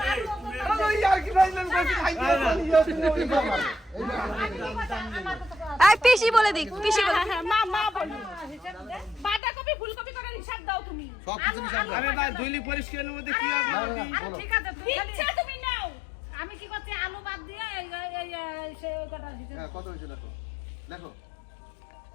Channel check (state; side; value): drops out; right; at 9.4 s